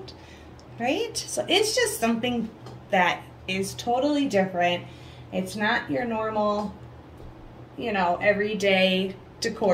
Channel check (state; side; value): identical; both; correlation 1.00